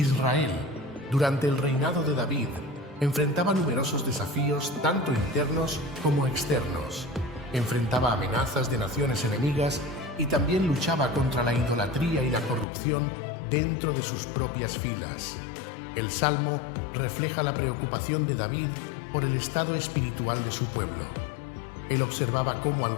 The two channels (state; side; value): drops out; right; at 12.7 s